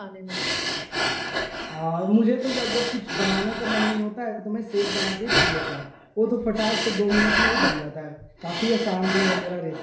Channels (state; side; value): identical; both; correlation 1.00